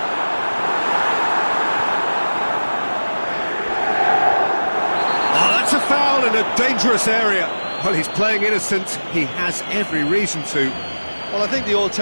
Oh, that's a foul in a dangerous area. Well, he's playing innocent. He has every reason to. Well, I think the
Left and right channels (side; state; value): both; inverted; correlation -1.00